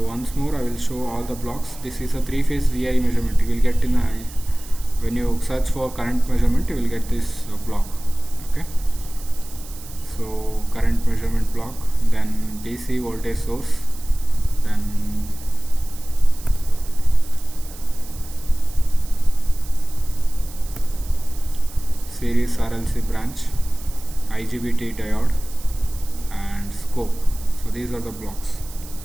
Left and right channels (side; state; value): right; noise; hiss, 17 dB below the sound